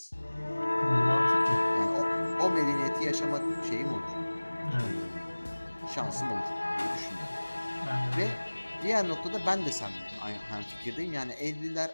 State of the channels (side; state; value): both; inverted; correlation -1.00